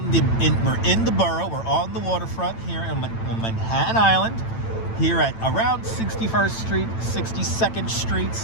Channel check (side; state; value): right; late; 9.0 ms